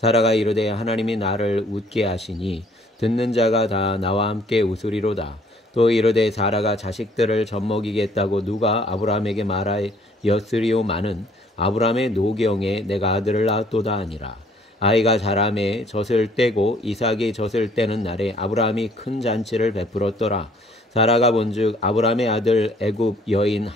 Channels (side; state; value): both; normal; correlation 0.60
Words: 이르되 하나님이 나를 웃게 하시니 듣는 자가 다 나와 함께 웃으리로다. 또 이르되 사라가 자식들을 젖먹이겠다고 누가 아브라함에게 말하였으리오마는 아브라함의 노경에 내가 아들을 낳았도다 하니라. 아이가 자라매 젖을 떼고 이삭이 젖을 떼는 날에 아브라함이 큰 잔치를 베풀었더라. 사라가 본즉 아브라함의 아들 애굽 여인